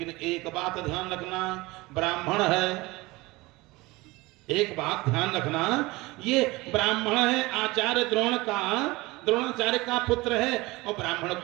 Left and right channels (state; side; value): quieter; left; 21.7 dB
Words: एक बात ध्यान रखना, ब्राह्मण है, एक बात ध्यान रखना, ये ब्राह्मण है, आचार्य द्रोणाचार्य का पुत्र है, और ब्राह्मण